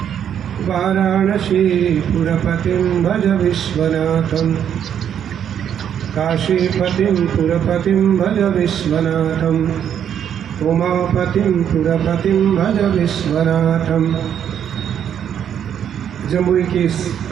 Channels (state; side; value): quieter; left; 9.1 dB